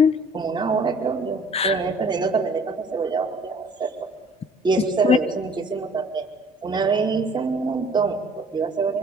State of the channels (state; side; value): normal; both; correlation 0.53